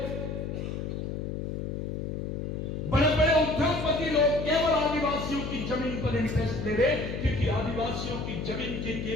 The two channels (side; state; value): left; noise; hum, 4 dB below the sound